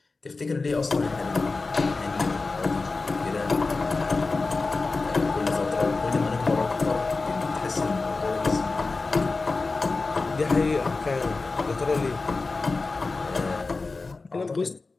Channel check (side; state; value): right; quieter; 3.8 dB